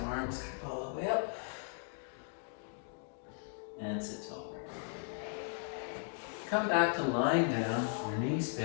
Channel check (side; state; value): right; silent; 53 dB below the other